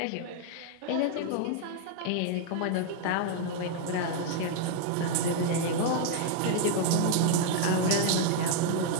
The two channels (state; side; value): different; both; correlation 0.00